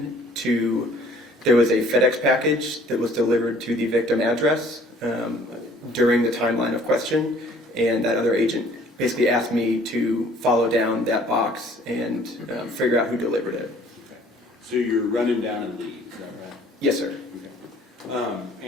there was a FedEx package that was delivered to the victim address during the timeline of question, and that other agent basically asked me to follow down that box and figure out who delivered it. Okay. So you're running down a lead, is that right? Yes, sir. Okay.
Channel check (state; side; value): normal; both; correlation 0.56